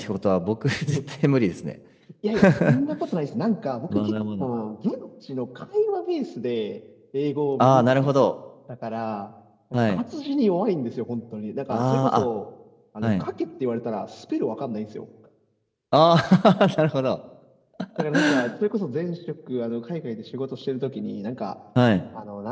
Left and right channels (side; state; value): both; identical; correlation 1.00